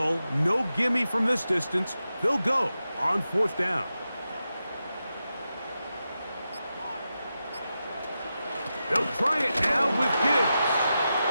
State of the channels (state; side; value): inverted; both; correlation -0.90